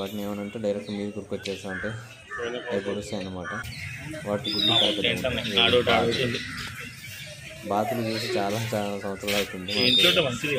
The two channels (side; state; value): both; identical; correlation 1.00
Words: ఏమనంటే డైరెక్ట్ మీరు గుర్కొచ్చేస్తా అంటే అవి పొడుస్తాయి అన్నమాట. వాటి గుడ్లు బాతులు చూసి చాలా సంవత్సరాలు అవుతుంది.